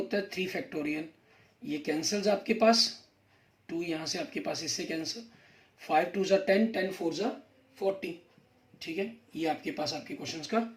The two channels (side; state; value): both; identical; correlation 1.00